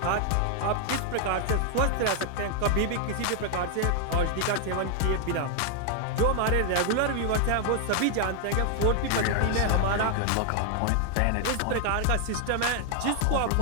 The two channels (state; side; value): different; both; correlation 0.00